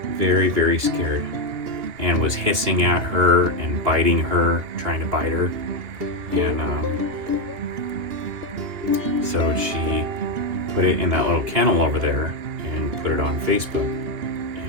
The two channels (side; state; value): left; late; 2.8 ms